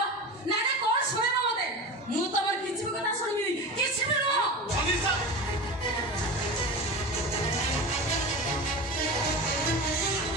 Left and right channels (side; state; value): both; normal; correlation 0.29